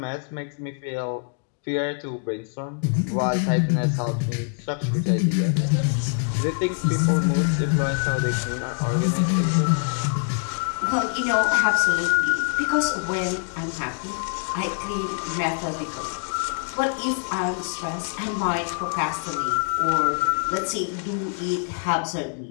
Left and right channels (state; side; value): silent; right; 62 dB below the other